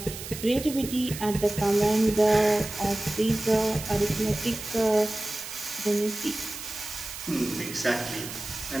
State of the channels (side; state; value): right; noise; hiss, 10 dB below the sound